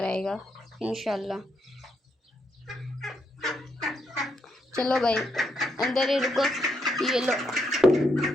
आएगा इंशाल्लाह। चलो भाई अंदर ही रुको, ये लो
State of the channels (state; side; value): normal; both; correlation 0.78